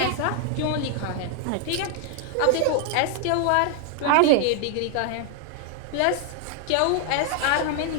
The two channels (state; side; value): different; both; correlation 0.00